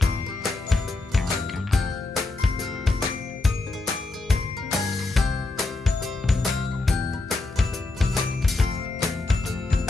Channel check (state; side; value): quieter; right; 3.2 dB